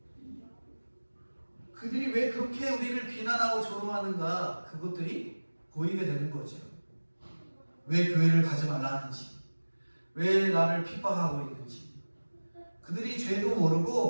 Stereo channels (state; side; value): inverted; both; correlation -1.00